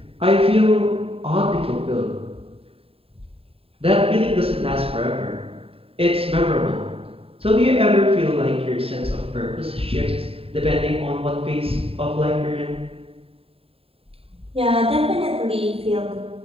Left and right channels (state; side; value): late; left; 0.27 ms